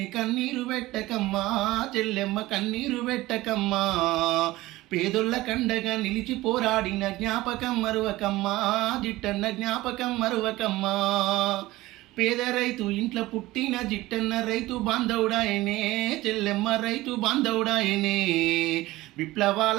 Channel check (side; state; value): left; quieter; 18.1 dB